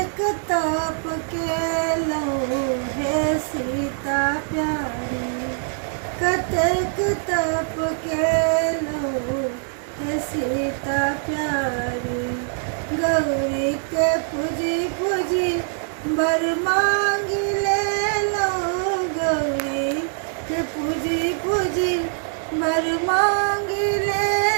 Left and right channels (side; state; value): left; silent; digital silence